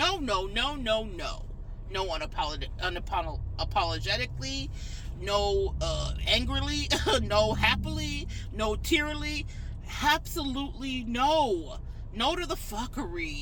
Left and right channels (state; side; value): identical; both; correlation 1.00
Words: No unapologetically, no angrily, no happily, no tearily. Absolutely no. No to the